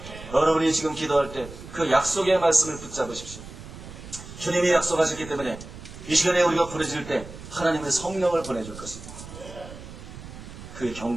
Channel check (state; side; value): noise; right; rumble, 14 dB below the sound